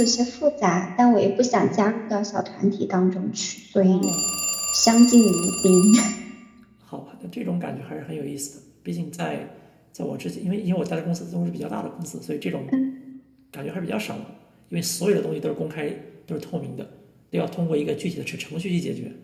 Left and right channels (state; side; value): identical; both; correlation 1.00